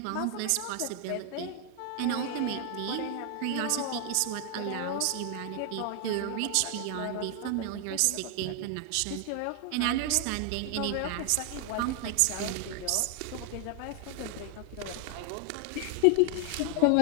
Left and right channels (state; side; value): different; both; correlation 0.00